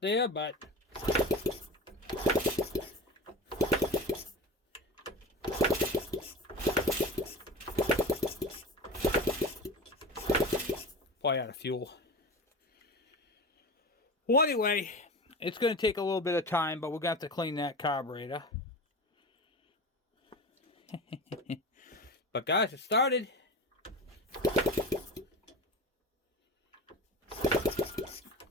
there, but probably out of fuel. Well, anyway, it's going to take a little bit of time, but we're going to have to clean that carburetor. But guys, it started.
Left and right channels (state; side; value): normal; both; correlation 0.29